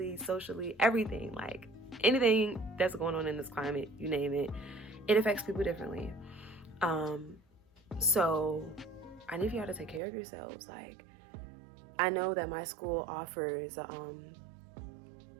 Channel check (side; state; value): left; drops out; at 10.0 s